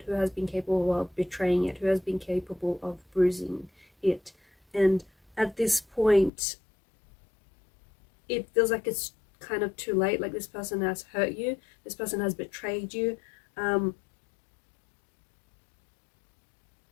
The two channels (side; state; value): right; drops out; at 6.3 s